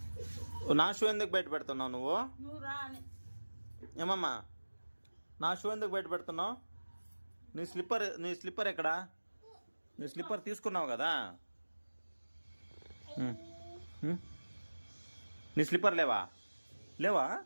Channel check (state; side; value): inverted; both; correlation -1.00